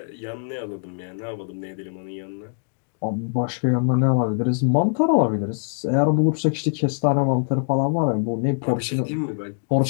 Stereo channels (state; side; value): silent; right; 62 dB below the other